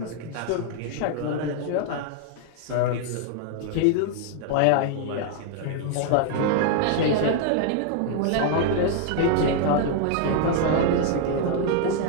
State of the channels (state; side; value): different; both; correlation 0.00